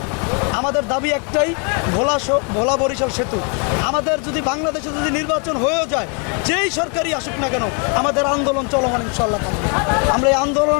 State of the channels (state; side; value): quieter; right; 37.6 dB